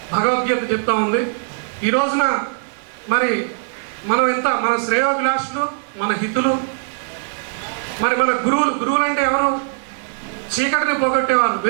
భగవద్గీత చెప్తా ఉంది. ఈ రోజున మరి మనం మన శ్రేయోభిలాషులు, మన హితులు, మరి మన గురువులు అంటే ఎవరు? చీకటిని పోగొట్టేవారు,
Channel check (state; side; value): silent; left; digital silence